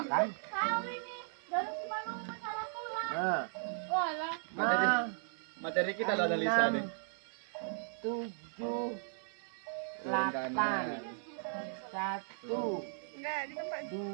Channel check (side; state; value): left; silent; digital silence